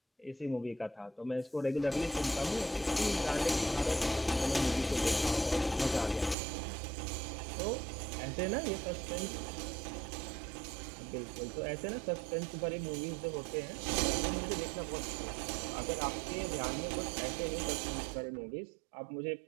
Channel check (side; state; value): left; drops out; at 6.4 s